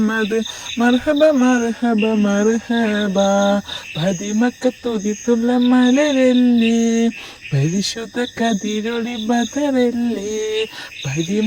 مرحبا مرحبا مرحبا. പതിമക്കത്തുതിത്തുള്ള മലരല്ലേ, പരിശുദ്ധ കതിരൊളി ബദറല്ലേ,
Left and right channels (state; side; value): identical; both; correlation 1.00